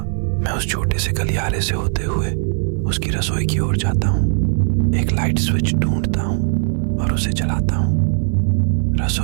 मैं उस छोटे से गलियारे से होते हुए उसकी रसोई की ओर जाता हूँ, एक लाइट स्विच ढूंढता हूँ और उसे जलाता हूँ।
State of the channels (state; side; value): silent; left; 60 dB below the other